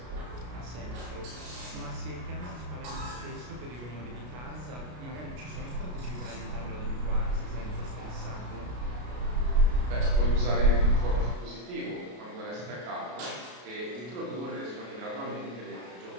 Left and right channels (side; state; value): left; late; 33 ms